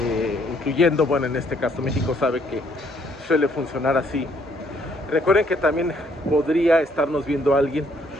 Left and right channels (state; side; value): normal; both; correlation 0.67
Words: incluyendo, bueno, en este caso México, sabe que suele funcionar así. Recuerden que también podría estarnos viendo alguien